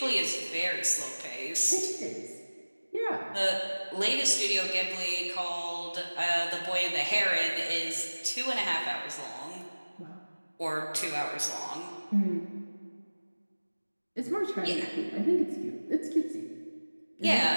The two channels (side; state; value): both; inverted; correlation -1.00